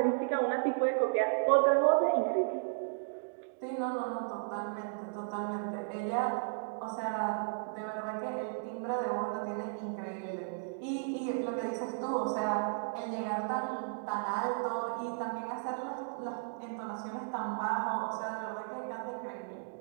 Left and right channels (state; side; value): silent; left; digital silence